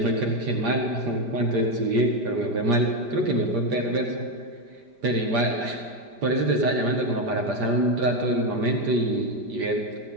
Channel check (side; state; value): left; late; 5.0 ms